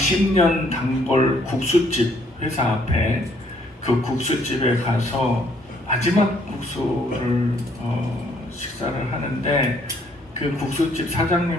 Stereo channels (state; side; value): normal; both; correlation 0.66